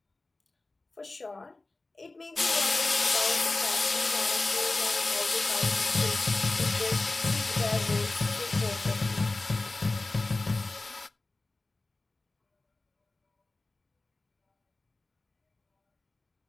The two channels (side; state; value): right; quieter; 3.1 dB